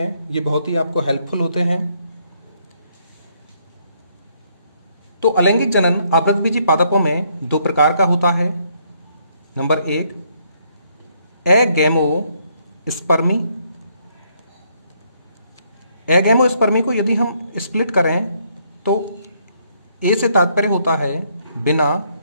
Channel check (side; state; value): both; inverted; correlation -0.71